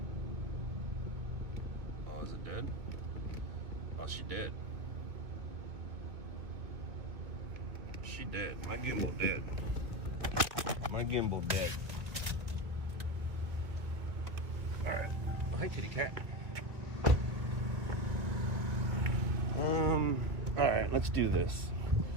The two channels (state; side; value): late; left; 2.0 ms